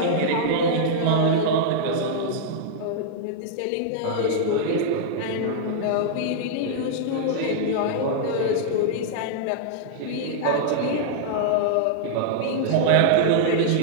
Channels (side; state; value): both; different; correlation -0.02